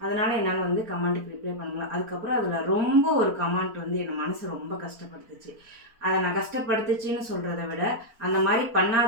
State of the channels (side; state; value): left; late; 4.4 ms